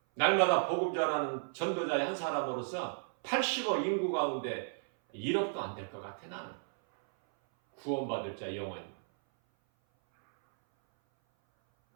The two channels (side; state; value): left; silent; 55 dB below the other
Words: 날마다 복음 전하는 전도자의 한 사람으로서 80억 인구 가운데 1억도 안 될 것 같아. 나는 구원받을 자 영원히.